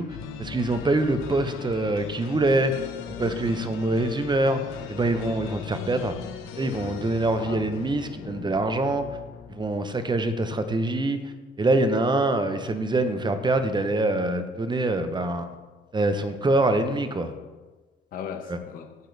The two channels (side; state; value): both; normal; correlation 0.66